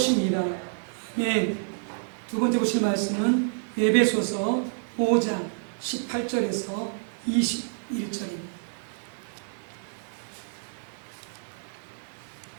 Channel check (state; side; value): silent; left; digital silence